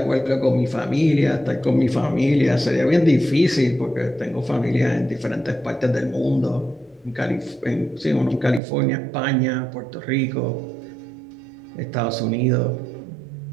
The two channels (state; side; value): drops out; left; at 8.6 s